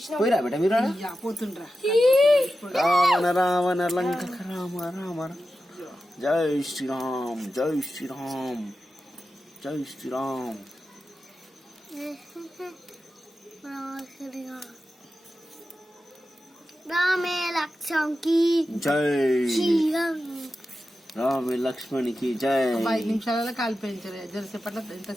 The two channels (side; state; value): both; normal; correlation 0.92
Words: పోయిరా బేట మీరు పోతుండ్రా. రావణ రావణ లంక రామ రామ. జై శ్రీరామ్ జై శ్రీరామ్ జై శ్రీరామ్. రామే లక్ష్మణ్కి జై రామ లక్ష్మణ్కి జై. 5 నిమిషాలలో కాలిపోయించారు. జరసేపట్ల